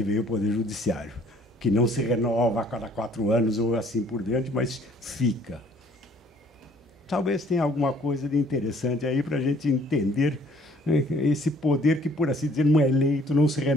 veio o Poder Judiciário, que não se renova a cada 4 anos ou assim por diante, mas fica. Talvez tenha alguma coisa de interessante aí para a gente entender esse poder que, por assim dizer, não é eleito, não se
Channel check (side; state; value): both; normal; correlation 0.59